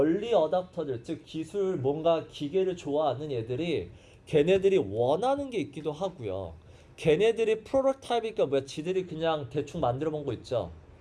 adopter들, 즉 기술 뭔가 기계를 좋아하는 애들이 걔네들이 원하는 게 있기도 하고요. 걔네들이 프로토타입이니까 뭐야? 지들이 그냥 대충 만들어 본 거 있죠.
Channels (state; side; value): identical; both; correlation 1.00